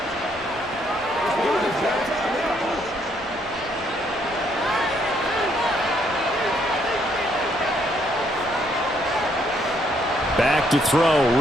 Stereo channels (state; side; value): normal; both; correlation 0.70